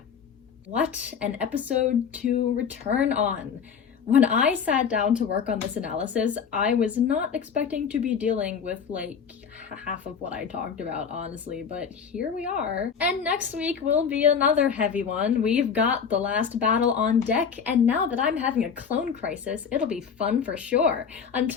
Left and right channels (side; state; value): right; quieter; 6.7 dB